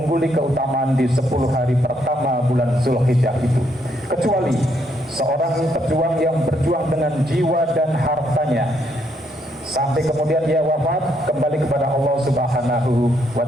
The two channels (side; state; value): both; normal; correlation 0.74